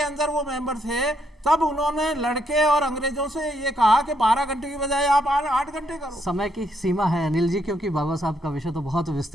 अंदर वो मेंबर थे, तब उन्होंने लड़के और अंग्रेजों से ये कहा कि 12 घंटे की बजाय आप 8 घंटे करो। समय की सीमा है अनिल जी, क्योंकि बाबा साहब का विषय तो बहुत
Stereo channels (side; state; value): both; normal; correlation 0.74